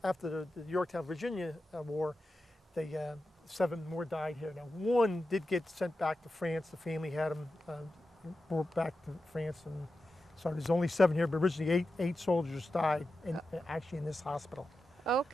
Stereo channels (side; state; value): both; normal; correlation 0.91